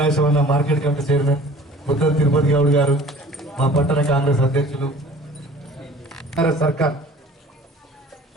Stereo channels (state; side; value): normal; both; correlation 0.47